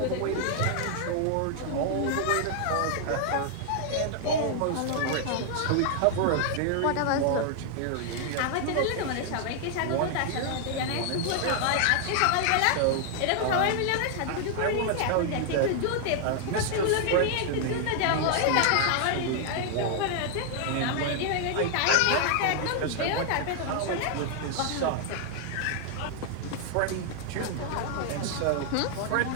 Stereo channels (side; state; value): both; different; correlation 0.00